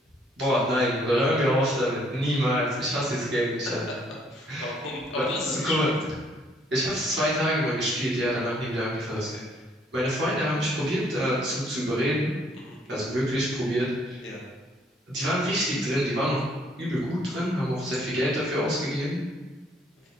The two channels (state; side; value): normal; both; correlation 0.65